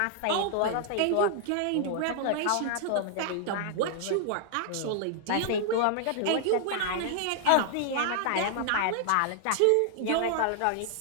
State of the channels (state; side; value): different; both; correlation -0.01